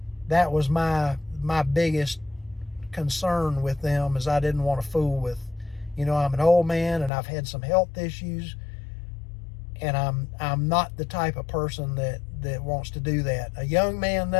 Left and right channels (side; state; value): right; drops out; at 7.1 s